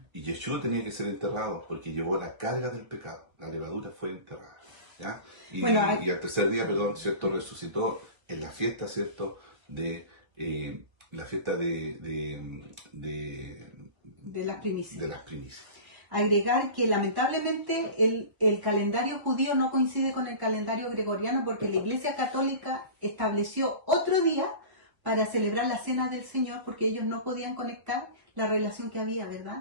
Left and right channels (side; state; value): left; late; 1.3 ms